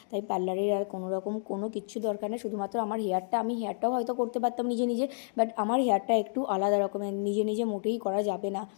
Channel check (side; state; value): right; silent; digital silence